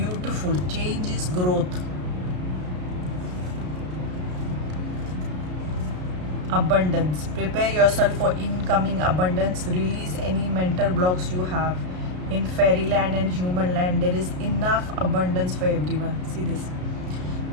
Change is growth. Abundance. Prepare yourself for incoming abundance. Release any mental blocks you have. In fairyland and human land, there is enough abundance for everyone. See this.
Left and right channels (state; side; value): late; left; 33 ms